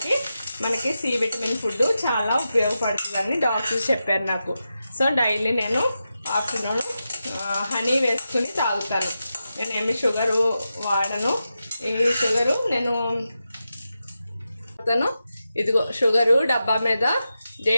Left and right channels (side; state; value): both; inverted; correlation -0.90